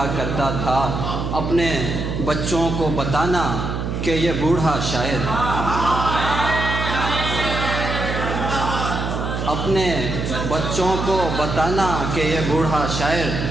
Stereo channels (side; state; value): right; noise; hum, 3 dB below the sound